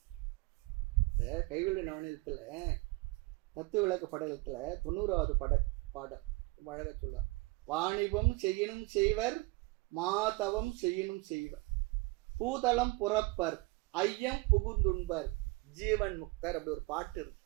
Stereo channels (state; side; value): quieter; left; 24.1 dB